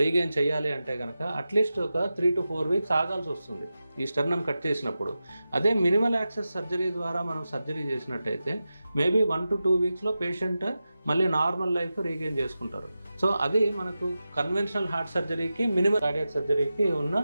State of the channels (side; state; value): both; inverted; correlation -0.92